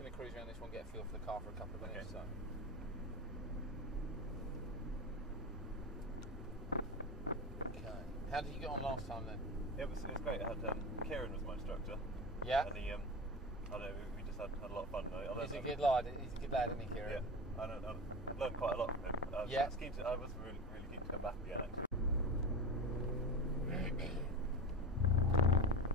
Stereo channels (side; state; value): both; normal; correlation 0.26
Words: to cruise around this one, get a feel for the car for a couple of minutes. Okay. Okay. How did you get on last time then? It was great. I had Kieran was my instructor. Yeah. And he, I don't know, we just had a lot of fun. He's a good lad. He's a good lad, isn't he, Kieran? Yeah. I've learned quite a lot from him. I was really keen to come back again, actually.